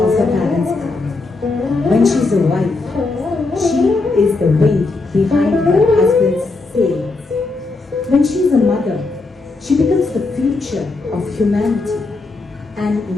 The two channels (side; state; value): right; quieter; 3.6 dB